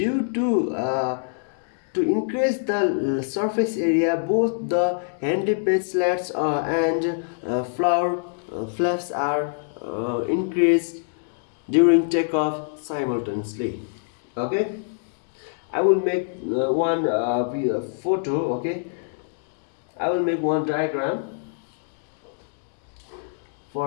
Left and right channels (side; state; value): right; silent; digital silence